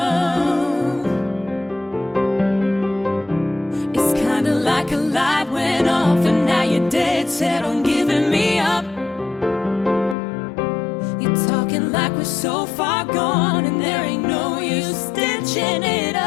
Like a light went off and now you're dead set on giving me up. You're talking like we're so far gone and there ain't no use stitching it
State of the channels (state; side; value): drops out; right; at 10.2 s